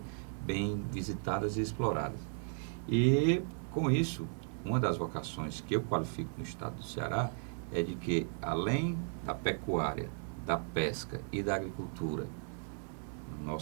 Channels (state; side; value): silent; left; 54 dB below the other